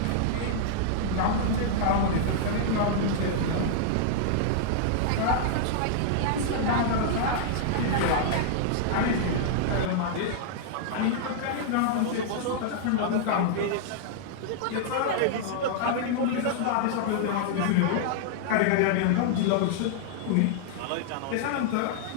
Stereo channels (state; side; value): different; both; correlation -0.01